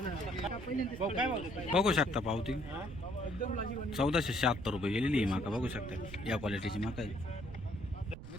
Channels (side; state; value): right; noise; rumble, 12 dB below the sound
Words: बघू शकता पावती 1476 रुपये गेलेली ही मका बघू शकता या क्वालिटीची मका आहे.